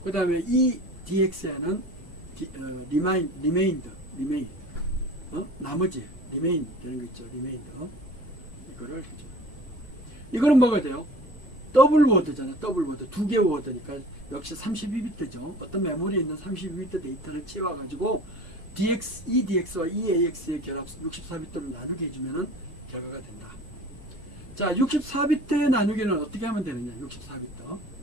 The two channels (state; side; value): normal; both; correlation 0.42